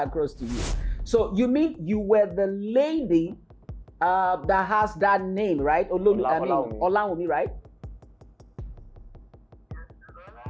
to you. So you mean you were the lady that has that name, right? Olaomi, right?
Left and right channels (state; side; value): identical; both; correlation 1.00